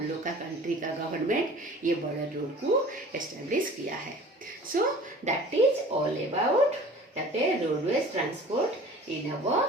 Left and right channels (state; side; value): normal; both; correlation 0.44